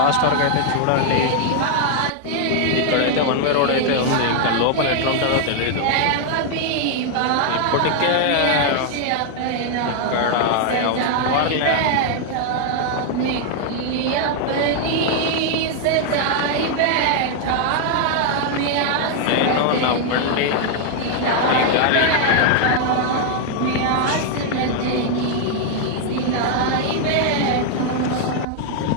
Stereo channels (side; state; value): both; different; correlation 0.00